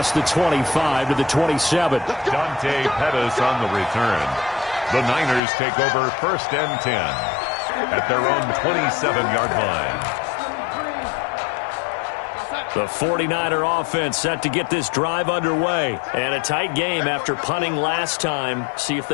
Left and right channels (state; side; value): drops out; right; at 5.4 s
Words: the 25 to the 27. Dante Pettis on the return. The Niners take over 1st and 10 at their own 27-yard line. The 49er offense set to get this drive underway. And a tight game after punting last time. See if